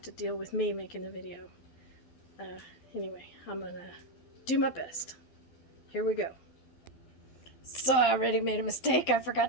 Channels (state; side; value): late; right; 12 ms